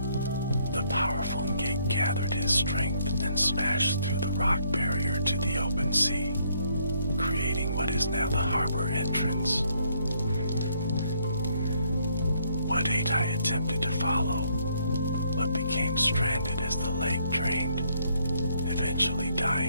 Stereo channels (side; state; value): both; inverted; correlation -0.69